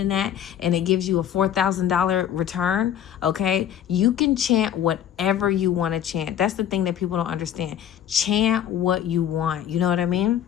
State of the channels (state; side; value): quieter; right; 10.0 dB